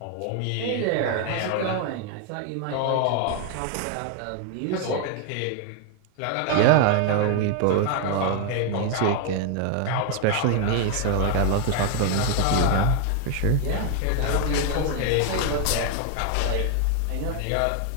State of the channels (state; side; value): different; both; correlation 0.01